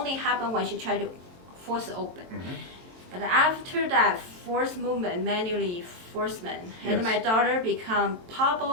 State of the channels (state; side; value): late; left; 23 ms